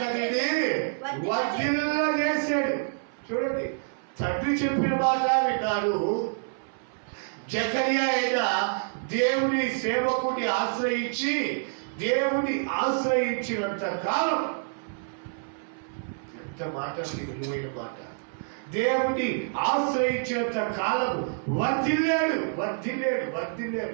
వర్ధిల్లజేశాడు. చూడండి, తండ్రి చెప్పిన మాట విన్నాడు. జకర్యా అయినా దేవుని సేవకుని ఆశ్రయించి దేవుని ఆశ్రయించినంత కాలం మాట విలువైన మాట. దేవుని ఆశ్రయించేంత కాలం వర్ధిల్లాడు.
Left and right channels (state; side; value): silent; left; 57 dB below the other